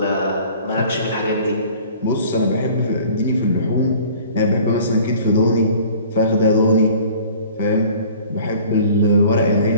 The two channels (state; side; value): inverted; both; correlation -0.49